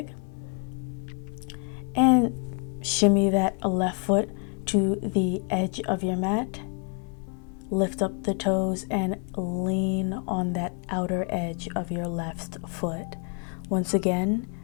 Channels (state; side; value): quieter; right; 39.7 dB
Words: and shimmy that left foot to the edge of your mat. Lift up the toes and lean on that outer edge of your left foot. Once again,